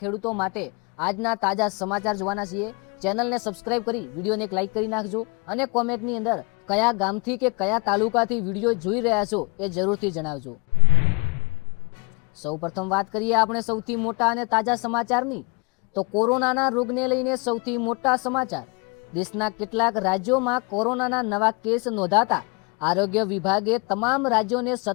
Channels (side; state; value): right; quieter; 30.5 dB